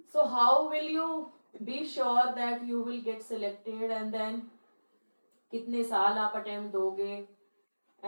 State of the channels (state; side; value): inverted; both; correlation -1.00